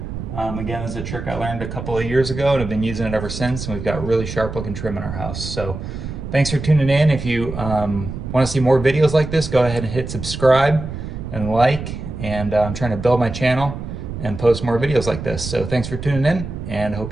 Again, this is a trick I learned a couple of years ago and I've been using it ever since, and we've got really sharp looking trim in our house. So thanks for tuning in. If you want to see more videos like this, go ahead and hit subscribe and like, and I'm trying to build my channel and post more videos like this. So thanks for tuning in, and hope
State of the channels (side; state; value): right; noise; rumble, 8 dB below the sound